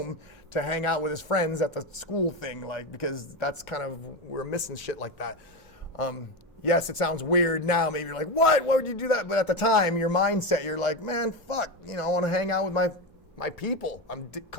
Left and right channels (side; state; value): both; normal; correlation 0.16